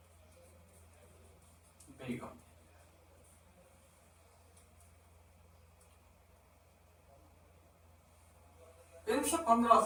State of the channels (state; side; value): identical; both; correlation 1.00